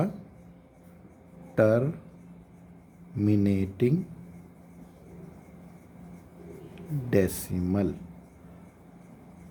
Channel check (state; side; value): identical; both; correlation 1.00